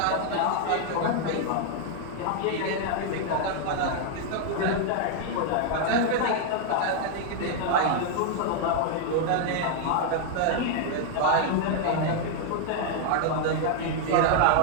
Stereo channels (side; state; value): both; different; correlation 0.00